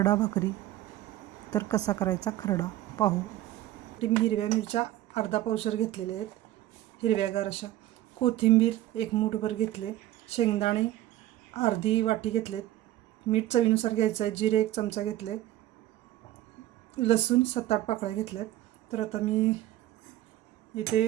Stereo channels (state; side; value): quieter; left; 14.5 dB